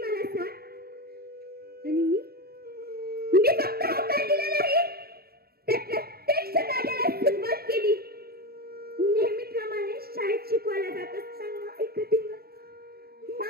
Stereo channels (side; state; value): left; late; 0.45 ms